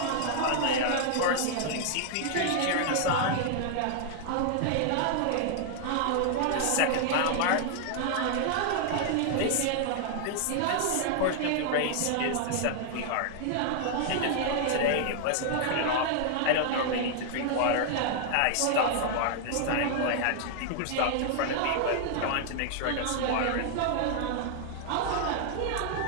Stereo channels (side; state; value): both; different; correlation 0.00